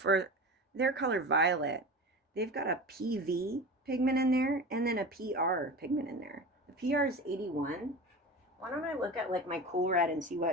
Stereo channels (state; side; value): normal; both; correlation 0.30